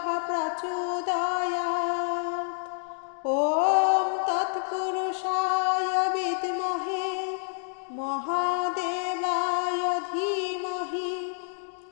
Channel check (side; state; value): right; silent; digital silence